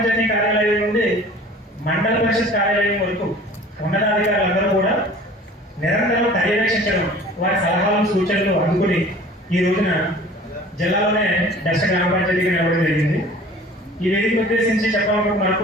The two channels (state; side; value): normal; both; correlation 0.46